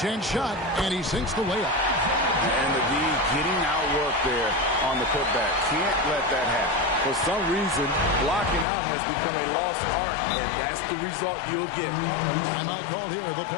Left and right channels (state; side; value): drops out; right; at 8.7 s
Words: chance shot, and he sinks the layup. And the D getting outworked there on the putback. Can't let that happen. For some reason, blocking out has become a lost art, and that's the result you'll get. Timeout called here. The